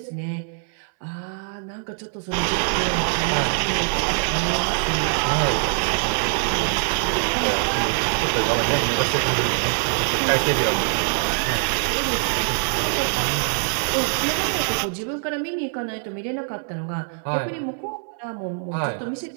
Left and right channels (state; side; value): silent; left; 63 dB below the other